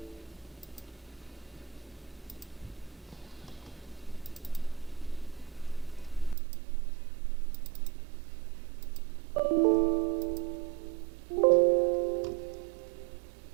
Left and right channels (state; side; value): drops out; left; at 6.4 s